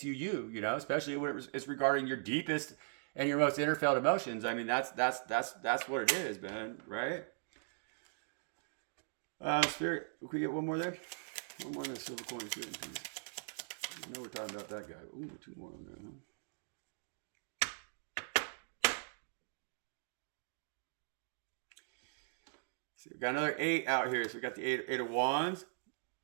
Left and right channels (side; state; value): left; silent; digital silence